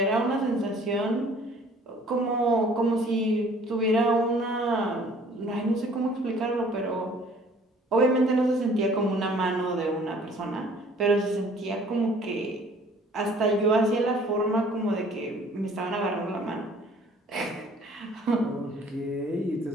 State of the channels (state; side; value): normal; both; correlation 0.54